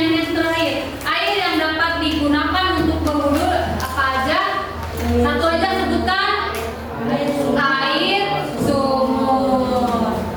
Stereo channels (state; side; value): identical; both; correlation 1.00